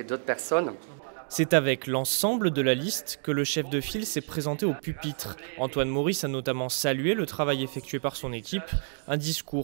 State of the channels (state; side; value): silent; left; digital silence